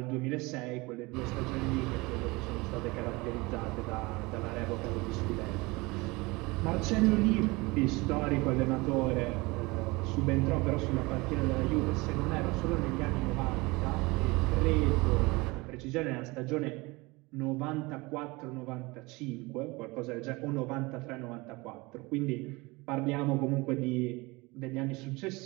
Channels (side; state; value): left; quieter; 23.9 dB